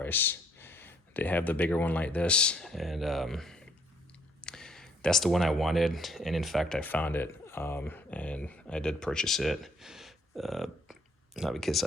They have the bigger one like this, and that's the one I wanted. And in fact, I found it, and I did purchase it. Not because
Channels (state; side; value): normal; both; correlation 0.66